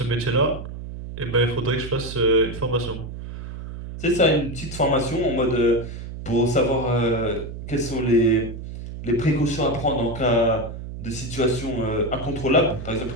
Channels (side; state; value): right; noise; hum, 9 dB below the sound